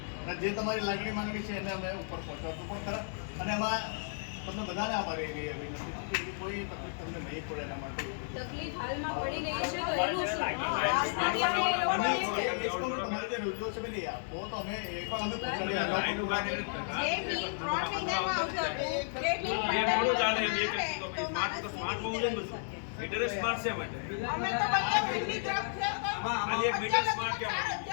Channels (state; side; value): silent; right; digital silence